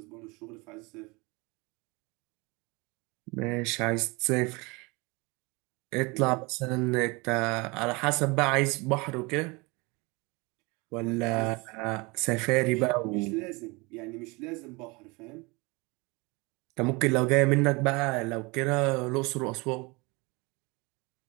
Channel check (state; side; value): quieter; left; 26.4 dB